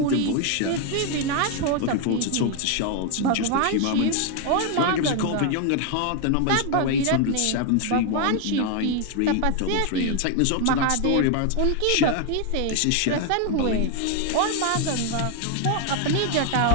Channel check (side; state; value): both; different; correlation 0.01